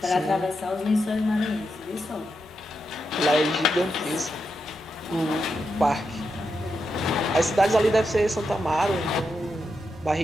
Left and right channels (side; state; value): both; normal; correlation 0.86